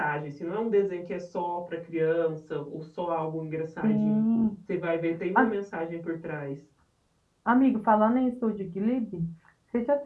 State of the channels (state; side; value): identical; both; correlation 1.00